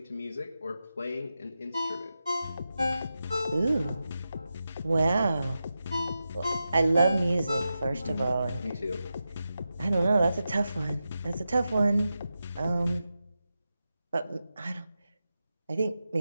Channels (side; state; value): both; inverted; correlation -0.91